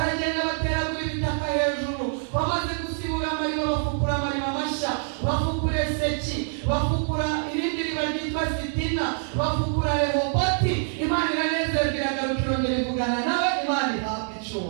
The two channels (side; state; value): left; silent; 61 dB below the other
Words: bateragura ibitaka hejuru. Bamaze gusibura amariba, bafukura amariba mashya, bafukura Eseki, bafukura irindi riba ryitwa Sitina, bafukura Rehoboti. Imana iranezerwa, iragaruka irongera ivugana nawe. Imana ihabwe